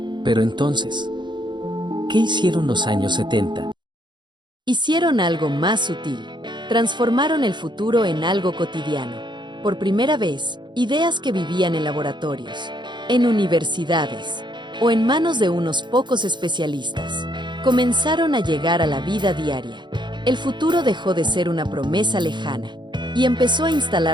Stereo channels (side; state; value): left; late; 0.22 ms